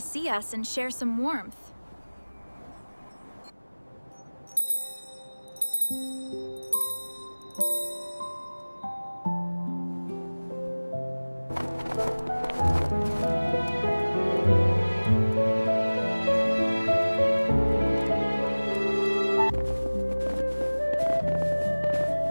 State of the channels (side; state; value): both; inverted; correlation -1.00